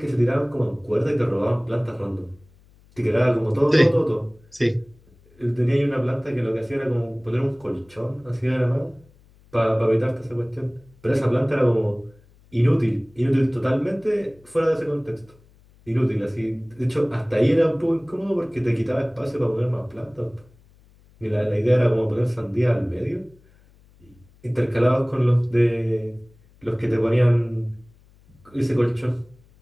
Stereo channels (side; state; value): left; noise; hum, 29 dB below the sound